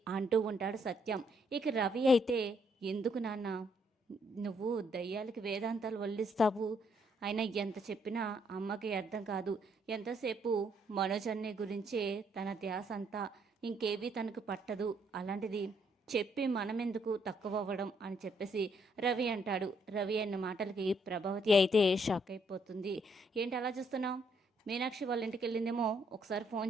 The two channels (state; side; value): normal; both; correlation 0.71